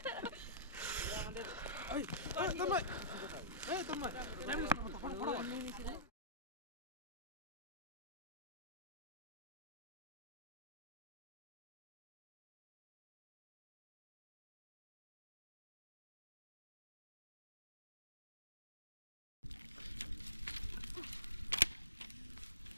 এই তন্ময়, এই তন্ময়,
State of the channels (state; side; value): inverted; both; correlation -0.30